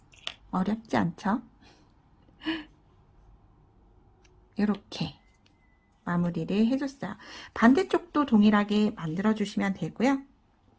어렵지 않죠? 이렇게 마무리를 해줬어요. 반대쪽도 동일하게 만들어주시면 되고요.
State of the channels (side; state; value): both; identical; correlation 1.00